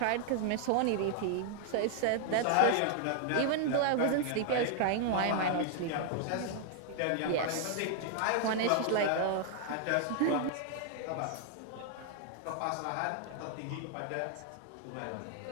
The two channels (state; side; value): different; both; correlation 0.00